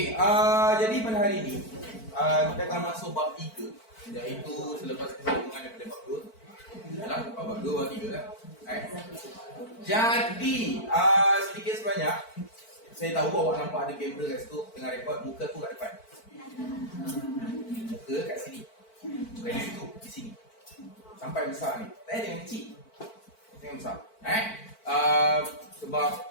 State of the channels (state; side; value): late; right; 4.5 ms